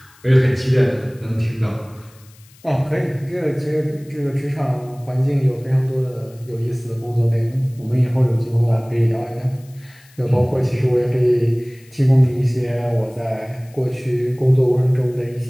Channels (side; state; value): left; noise; hiss, 28 dB below the sound